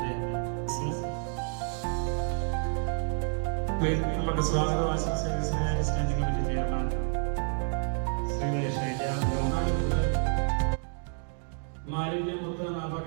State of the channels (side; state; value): left; silent; 58 dB below the other